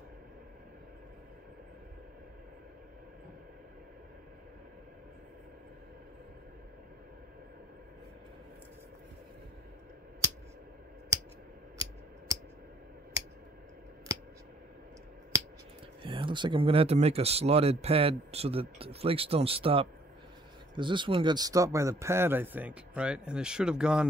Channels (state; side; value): normal; both; correlation 0.60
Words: Yeah, looks like I'm going to have to make a slotted pad so that the flakes don't stop. Because this one got stopped by the pad, I think, right? And it should have